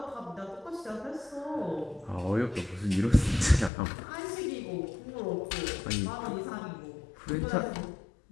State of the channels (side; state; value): right; drops out; at 3.7 s